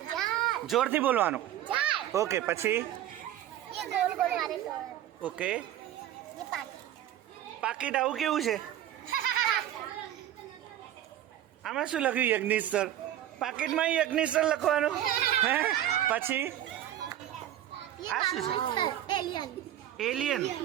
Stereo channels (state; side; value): quieter; left; 12.1 dB